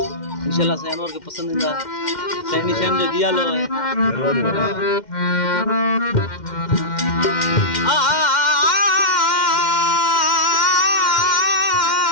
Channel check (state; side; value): late; right; 2.1 ms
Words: इंशाल्लाह साईं अनवर के पसंदीदा साईं निशान जो दिया लो है